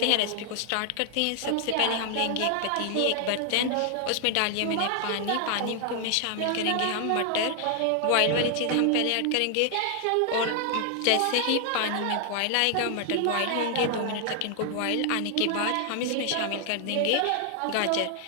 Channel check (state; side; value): different; both; correlation 0.00